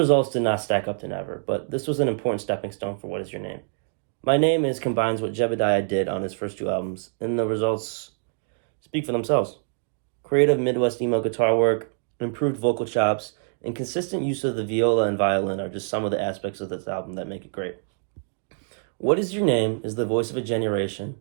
did not stack up to Never, but this was an important stepping stone for What Is Your Name. My Name Is combines what Jebediah did on his first two albums, and the results speak for themselves. Creative Midwest emo guitar work, improved vocal chops, and consistent use of the viola and violin are just some of the aspects of this album that make it great. What Is Your Name is the voice of a generation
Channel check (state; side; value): silent; left; digital silence